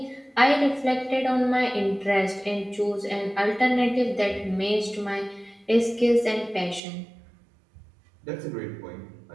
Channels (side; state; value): left; drops out; at 6.8 s